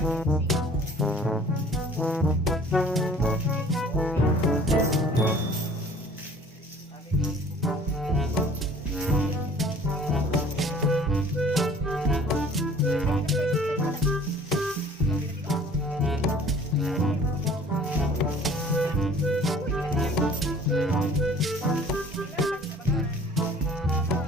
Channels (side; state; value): both; normal; correlation 0.51